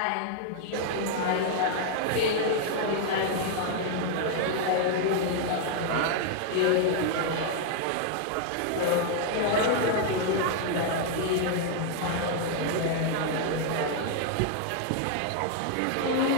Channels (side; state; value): both; different; correlation 0.00